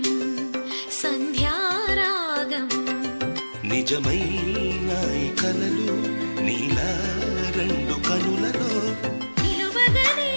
సంధ్యారాగం నిజమైన ఈ కలలు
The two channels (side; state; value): both; inverted; correlation -1.00